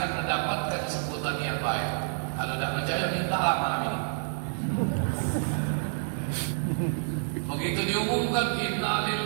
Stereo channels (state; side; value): silent; left; 59 dB below the other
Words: mendapatkan sebutan yang baik. Kalau tidak percaya mintalah malam ini. Begitu diumumkan inna